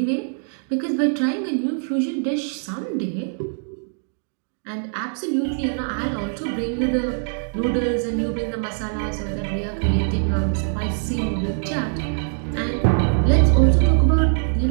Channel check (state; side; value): silent; left; digital silence